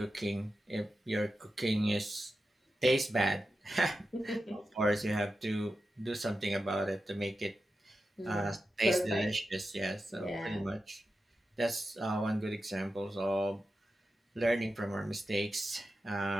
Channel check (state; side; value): normal; both; correlation 0.91